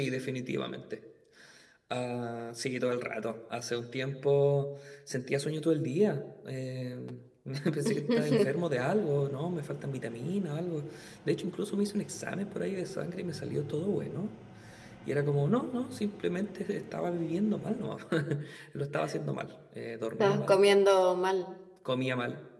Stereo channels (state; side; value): identical; both; correlation 1.00